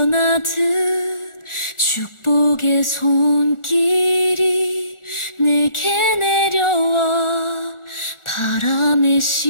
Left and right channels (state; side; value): late; right; 1.4 ms